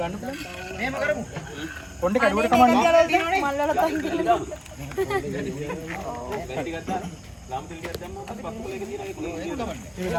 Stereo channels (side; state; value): both; identical; correlation 1.00